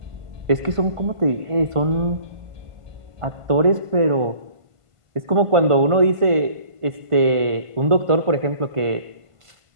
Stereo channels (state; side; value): late; left; 1.5 ms